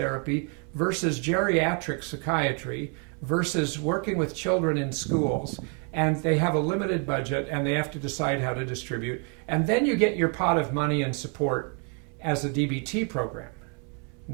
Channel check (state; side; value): quieter; left; 39.0 dB